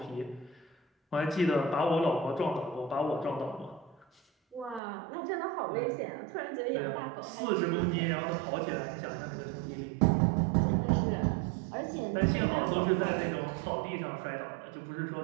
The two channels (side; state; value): left; drops out; at 4.8 s